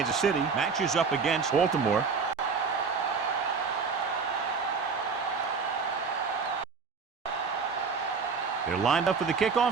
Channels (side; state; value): left; quieter; 5.2 dB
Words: City matches up against Baltimore. They're lined up for the